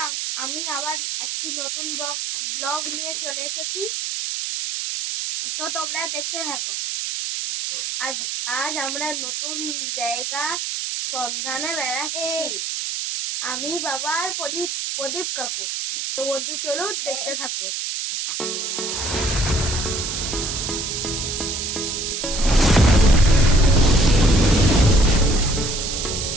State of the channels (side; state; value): right; noise; hiss, 3 dB below the sound